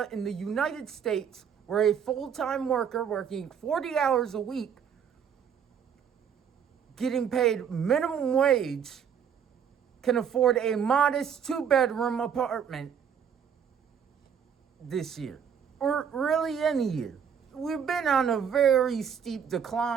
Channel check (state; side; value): quieter; left; 7.7 dB